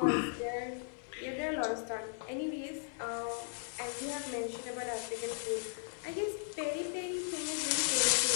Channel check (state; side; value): silent; right; 53 dB below the other